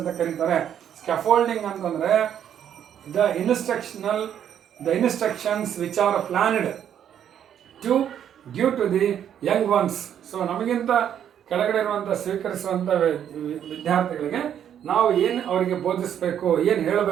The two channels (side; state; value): left; quieter; 9.5 dB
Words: ಕರೀತಾರೆ. Scaffolding ಅಂತಂದರೆ the instructions which are planned to give to the young ones. So ನಮಗಿಂತ ಕೆಳಗಡೆ ಇರುವಂಥ ಸ್ವೀಕರಿಸುವಂಥ ವಿದ್ಯಾರ್ಥಿಗಳಿಗೆ ನಾವು ಏನು ಅವರಿಗೆ ಬೋಧಿಸಬೇಕು, ಏನು